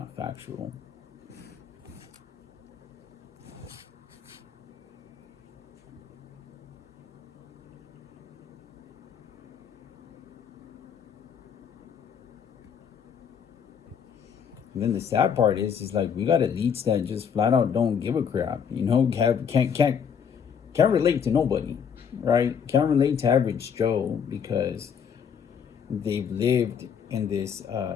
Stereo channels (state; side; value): quieter; right; 7.4 dB